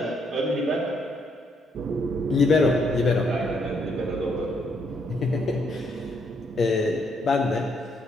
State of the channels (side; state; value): both; normal; correlation 0.73